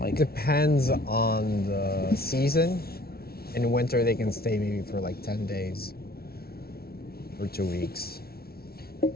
Depends on the season. In winter, they can stay maybe for like 10 days or 2 weeks.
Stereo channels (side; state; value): right; late; 0.44 ms